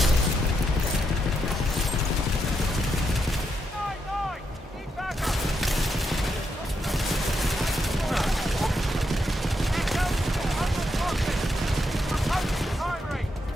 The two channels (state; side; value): normal; both; correlation 0.81